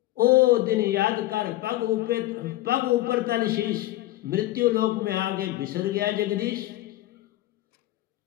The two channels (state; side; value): quieter; right; 16.3 dB